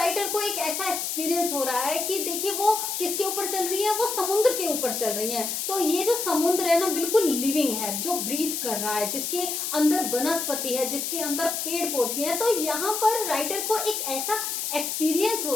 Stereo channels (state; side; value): noise; left; hiss, 2 dB below the sound